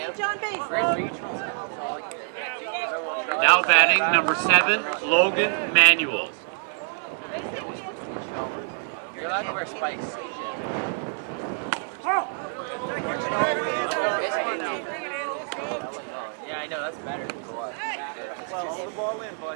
John Bass. Now batting number 7, Logan Manuels. You're allowed to wear spikes. Yeah, I know, that's better. Well, hold the ball in,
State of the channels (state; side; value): silent; left; 61 dB below the other